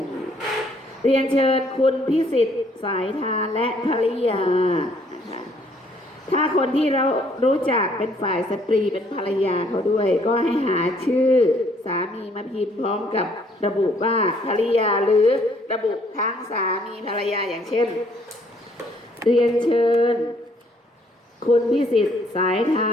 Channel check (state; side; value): normal; both; correlation 0.64